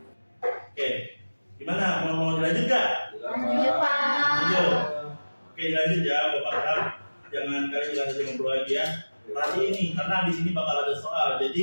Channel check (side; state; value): both; inverted; correlation -1.00